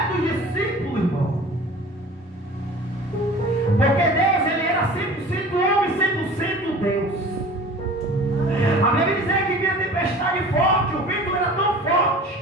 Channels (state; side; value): normal; both; correlation 0.42